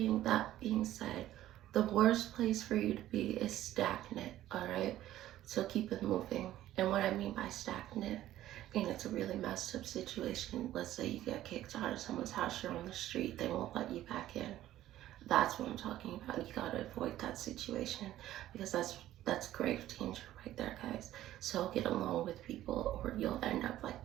that being said, the worst place for you to be is stagnant, all right? So keep it moving. And what I mean by stagnant, and it's a really messed up situation. Let's say you get kicked out of someone's house, you're on the street, they won't let you back in. That's what I'm talking about. You gotta avoid that situation because that's grave danger right there, guys. So get along with people or you'll end up like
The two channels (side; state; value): left; quieter; 13.7 dB